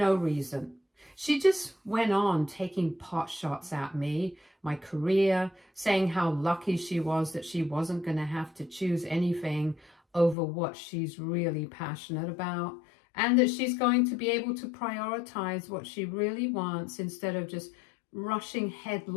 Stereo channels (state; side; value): drops out; right; at 10.4 s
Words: reason. She just went on taking pot shots at me, my career, saying how lucky she was that she wasn't going to have to choose anything over what she's really passionate about, and that she's going to be able to prioritize what she really wants instead of just rushing